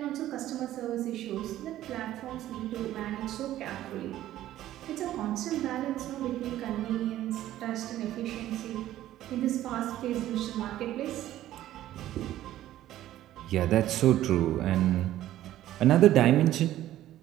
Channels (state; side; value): quieter; left; 13.5 dB